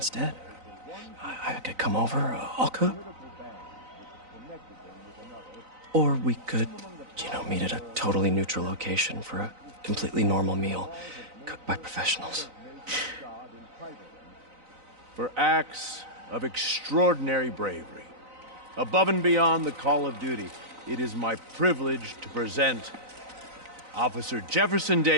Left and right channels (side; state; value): left; late; 3.9 ms